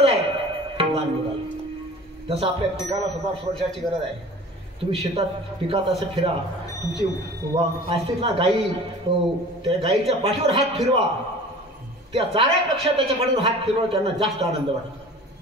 आहे. लहान मुलाला जसं आपल्या पिकाला सुद्धा स्पर्शाची गरज आहे. तुम्ही शेतात पिकात असं फिरा, तुमची असते ना गाई, त्या गाईच्या पाठीवर हात फिरवा. त्या चाऱ्यापेक्षा त्याच्या पाठीवर हात फिरवा त्यांना जास्त आनंद वाटतो.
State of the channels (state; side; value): normal; both; correlation 0.42